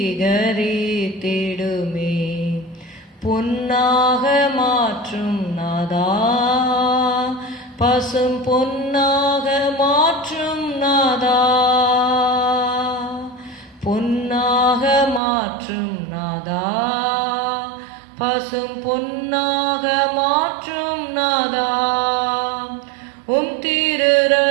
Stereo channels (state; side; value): drops out; left; at 15.2 s